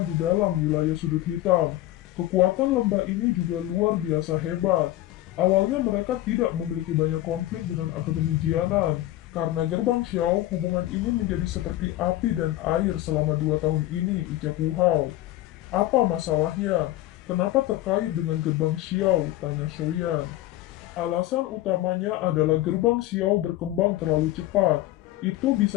di dalam wilayah sudut hitam. Kekuatan lembah ini juga luar biasa hebat. Awalnya mereka tidak memiliki banyak konflik dengan Akademi Jianan. Karena gerbang Xiao, hubungan ini menjadi seperti api dan air selama 2 tahun ini, ucap Wu Hao. Apa masalahnya? Kenapa terkait dengan gerbang Xiao? Tanya Soyan. Alasan utamanya adalah gerbang Xiao berkembang terlalu cepat. Itu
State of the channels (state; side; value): quieter; right; 15.4 dB